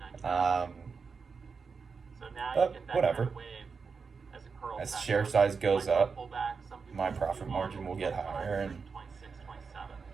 but whatever. As share size goes up, my profit margin will get higher, and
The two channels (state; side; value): quieter; left; 5.2 dB